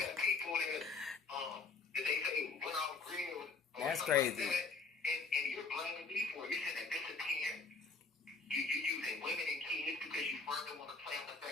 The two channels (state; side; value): quieter; right; 4.3 dB